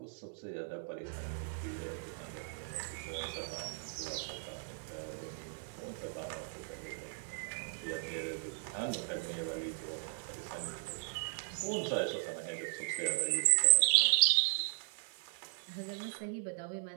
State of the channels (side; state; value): left; silent; 53 dB below the other